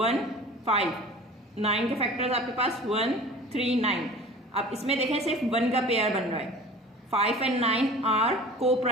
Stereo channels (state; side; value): normal; both; correlation 0.41